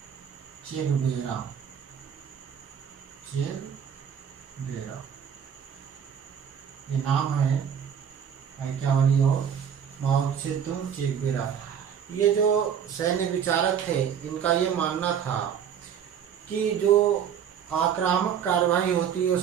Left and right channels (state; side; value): quieter; left; 8.2 dB